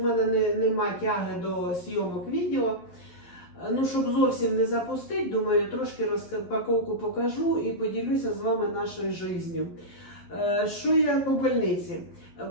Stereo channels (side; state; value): right; late; 11 ms